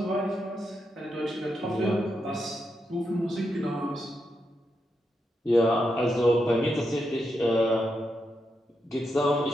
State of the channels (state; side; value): normal; both; correlation 0.84